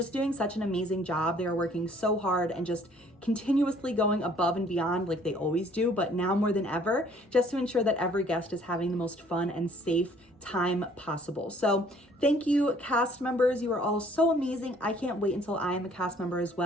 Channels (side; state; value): both; normal; correlation 0.58